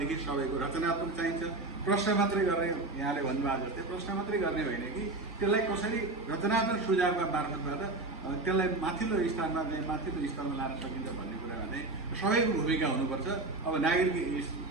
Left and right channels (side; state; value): left; quieter; 3.1 dB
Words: सबैको रचनात्मक चाहिन्छ। प्रश्न मात्रै गर्ने, यहाँले भन्नुभएको जस्तै प्रश्न मात्रै गर्ने होइन कि त्यसलाई कसरी रचनात्मक सुझावका मार्फतबाट त्यसलाई माथिल्लो स्तरमा चाहिँ माथिल्लो स्तरमा लान सकिन्छ भन्ने कुरामा चाहिँ सबैको भूमिका हुनुपर्छ। अब